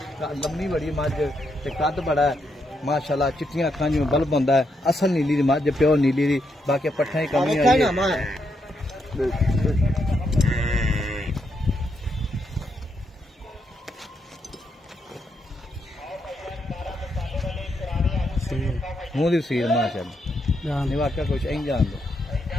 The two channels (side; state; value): both; normal; correlation 0.80